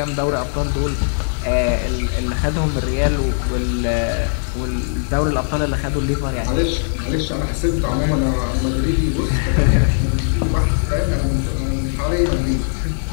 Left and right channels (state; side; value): silent; right; 66 dB below the other